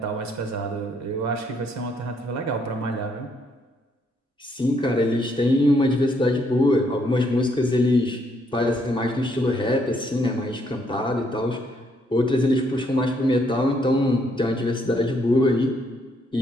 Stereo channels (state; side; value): normal; both; correlation 0.71